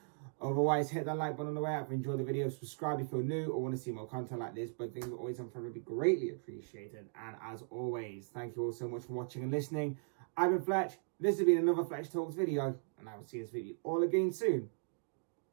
Otherwise, hit that like button on the way out if you enjoyed the video. Subscribe if you're new or want to see more content like this. But things are always on front would be greatly appreciated. And as always, thank you all so much for watching and listening. I've been Fletch. This has been another Fletch Talks video. And I will see this video all again soon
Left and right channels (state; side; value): silent; left; digital silence